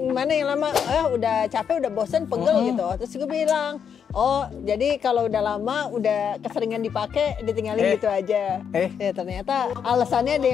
yang lama? Udah capek, udah bosan, pegel gitu. Terus gue bilang, oh jadi kalau udah lama, udah keseringan dipakai, ditinggalin gitu aja. Ya ternyata alasannya ada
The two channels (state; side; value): quieter; right; 7.5 dB